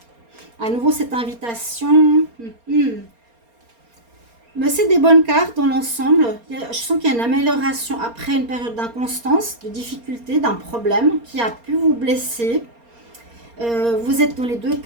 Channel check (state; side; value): late; left; 4.3 ms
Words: À nouveau, cette invitation. Mais c'est des bonnes cartes dans l'ensemble. Je sens qu'il y a une amélioration après une période d'inconstance, de difficulté, d'un problème qui a pu vous blesser. Vous êtes dans les 2